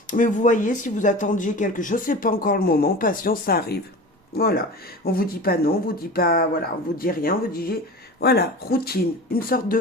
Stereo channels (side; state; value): both; normal; correlation 0.33